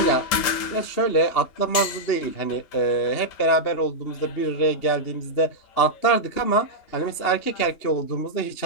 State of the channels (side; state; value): right; late; 2.8 ms